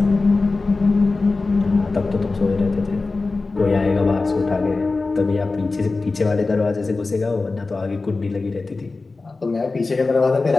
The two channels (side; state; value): right; quieter; 3.7 dB